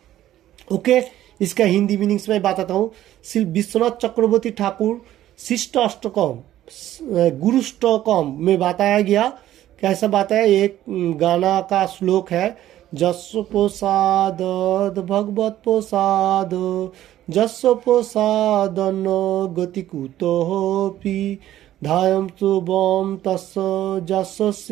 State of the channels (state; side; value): quieter; left; 13.1 dB